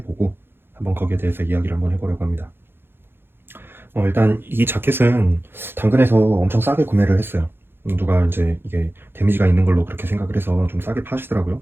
한번 거기에 대해서 이야기를 한번 해보려고 합니다. 일단 이 자켓은 당근에서 엄청 싸게 구매를 했어요. 누가 이제 이게 데미지가 있는 걸로 그렇게 생각을 해서 좀 싸게 파시더라고요.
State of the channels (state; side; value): late; left; 0.10 ms